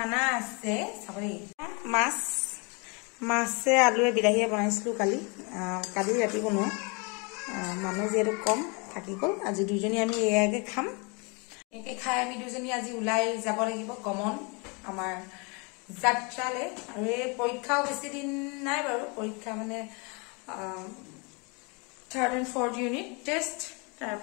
আছে চাবলি মাছে আলুৱে বিলাহীয়ে বনাইছিলো কালি ৰাতি বনোৱা মানুহ যেহেতু কম থাকি গল আজি দুজনী আমি এয়াকে খাম একে খাই আমি দুজনী আজি উলাই যাব লাগিব কমন আমাৰ যাত্ৰালে আৰু এই পৰীক্ষাও বেছি দিন নাই বাৰু পৰীক্ষা মানে 3rd and 4th unit test তাৰ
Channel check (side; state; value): right; quieter; 31.6 dB